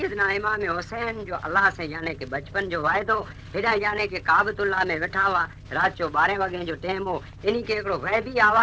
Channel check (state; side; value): identical; both; correlation 1.00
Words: इमाम हुसैन जो अल्लाह से यानी कि बचपन जो वायदो हेॾा यानी कि काबतुल्लाह में वेठा हुआ। रात जो 12 वगे जो टाइम हो, इन के हिकिड़ो गैबी